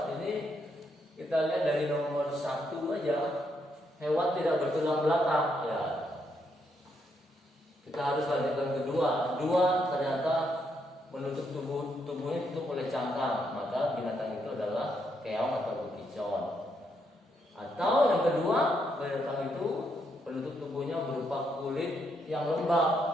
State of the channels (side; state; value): both; normal; correlation 0.77